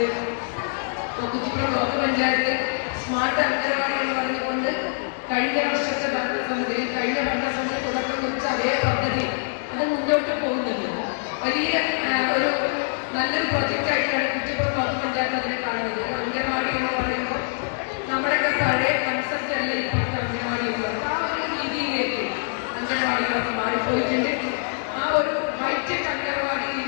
കുറ്റിപ്പുറം ബ്ലോക്ക് പഞ്ചായത്ത് സ്മാർട്ട് അംഗനവാടികൾ പറഞ്ഞുകൊണ്ട് കഴിഞ്ഞ വർഷത്തെ ഭരണസമിതി തുടക്കം കുറിച്ച അതേ പദ്ധതി അത് മുന്നോട്ട് പോകുന്നുണ്ട്. വലിയ ഒരു നല്ലൊരു പ്രൊജക്റ്റായിട്ടാണ് കുറ്റിപ്പുറം ബ്ലോക്ക് പഞ്ചായത്ത് അതിനെ കാണുന്നത്. അംഗനവാടി എന്ന് പറയുമ്പോൾ നമ്മുടെയൊക്കെ പഴയ കൺസെപ്റ്റ് അല്ല ഇപ്പോഴത്തെ അംഗനവാടി എന്ന് പറയുന്നത്. ആ ഒരു രീതിയിലേക്ക് അംഗനവാടികളൊക്കെ മാറിപ്പോയിട്ടുണ്ട്. ആ ഒരു ഹൈടെക് അംഗനവാടിയിൽ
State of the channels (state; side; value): silent; right; digital silence